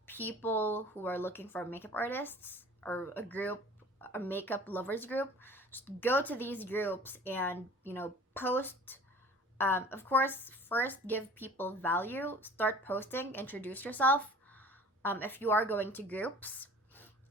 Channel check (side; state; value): both; normal; correlation 0.46